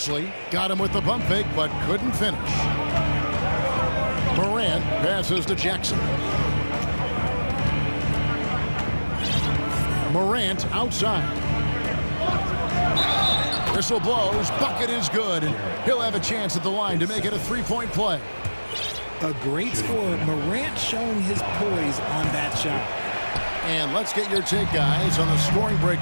Got him with the pump fake, but couldn't finish. Morant passes to Jackson. Morant outside. Whistle blows. Bucket is good. And he'll have a chance at the line to make it a 3-point play. A great score. Morant showing his poise on that shot. And let's get your take, guys, on the scoring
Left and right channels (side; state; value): both; inverted; correlation -1.00